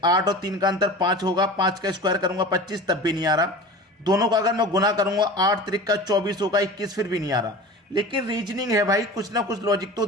8 और 3 का अंतर 5 होगा, 5 का स्क्वायर करूंगा 25, तब भी नहीं आ रहा। दोनों का अगर मैं गुना करूंगा 8 त्रिक का 24 होगा, 21 फिर भी नहीं आ रहा। लेकिन रीजनिंग है भाई, कुछ ना कुछ लॉजिक तो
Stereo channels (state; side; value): normal; both; correlation 0.36